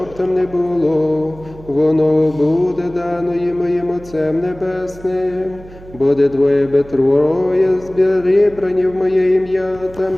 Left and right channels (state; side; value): noise; right; hum, 19 dB below the sound